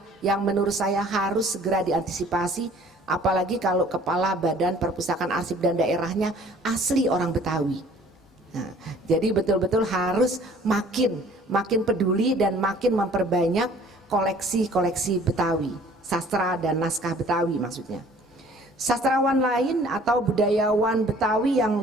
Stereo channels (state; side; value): normal; both; correlation 0.53